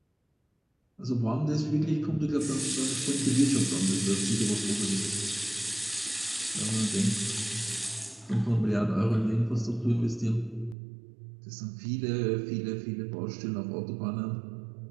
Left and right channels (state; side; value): drops out; left; at 10.8 s